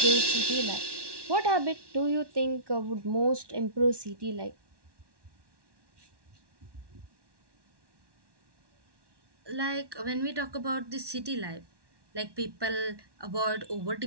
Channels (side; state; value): left; late; 1.1 ms